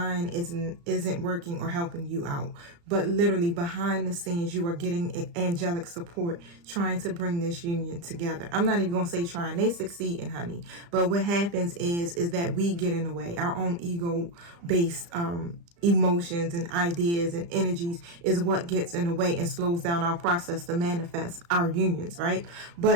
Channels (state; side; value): late; left; 35 ms